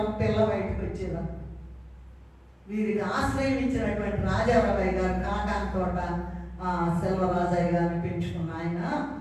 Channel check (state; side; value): identical; both; correlation 1.00